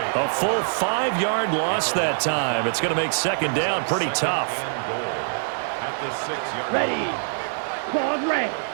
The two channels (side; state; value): left; silent; 63 dB below the other